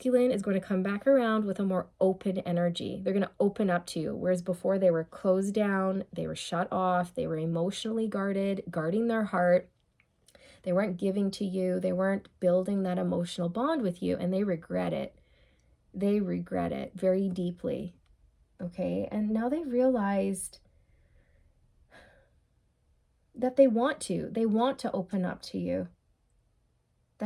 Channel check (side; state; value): both; identical; correlation 1.00